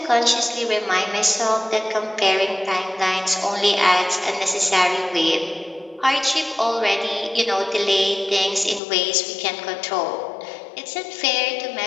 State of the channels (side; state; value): right; drops out; at 8.8 s